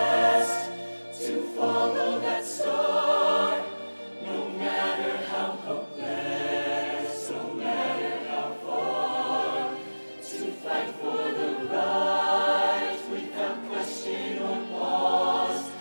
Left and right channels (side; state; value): both; inverted; correlation -1.00